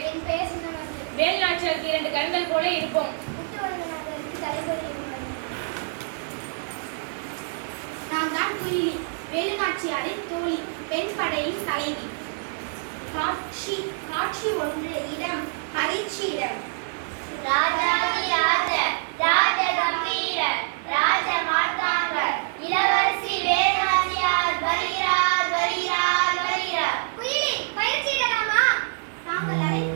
என் பெயர் சின்ன மருது. வேலுநாச்சியாருக்கு 2 கண்கள் போல இருப்போம். முத்துவரங்கநாதருக்கு தலைவலி இருந்தது. நான் தான் குயிலி, வேலுநாச்சியாரின் தோழி, பெண் படையின் தலைவி. காட்சி 1 இடம் பரீட்சியிடம். ராஜாதி ராஜ ராஜ கம்பீர ராஜ மார்த்தாங்க இளவரசி வேலுநாச்சியார் வருகிறார் வருகிறார் வருகிறார். குயிலி, பயிற்சியிடலாமா? தாங்கள்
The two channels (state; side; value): silent; left; digital silence